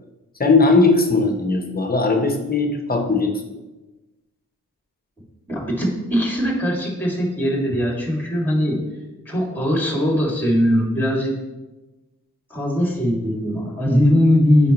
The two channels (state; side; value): normal; both; correlation 0.65